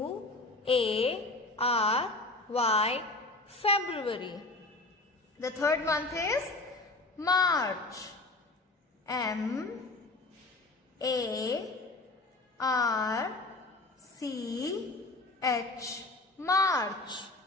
February. The third month is March. M-A-R-C-H. March.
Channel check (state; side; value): quieter; right; 3.1 dB